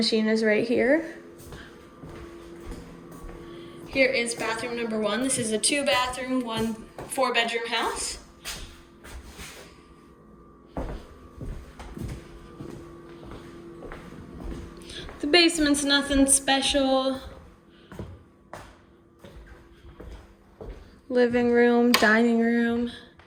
is right here. Here is bathroom number 1. This is a 2-bathroom, 4-bedroom house. The basement's nothing special. Living room, dining room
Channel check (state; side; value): identical; both; correlation 1.00